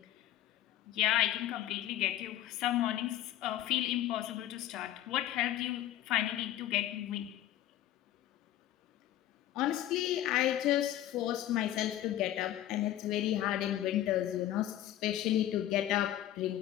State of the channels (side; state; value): right; quieter; 12.8 dB